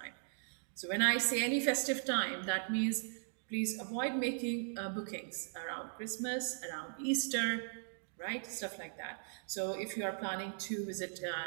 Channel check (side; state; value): left; silent; digital silence